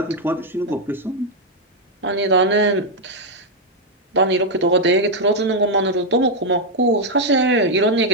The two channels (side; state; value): both; normal; correlation 0.01